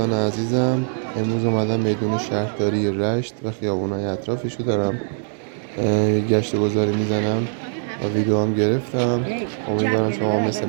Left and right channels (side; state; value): left; silent; digital silence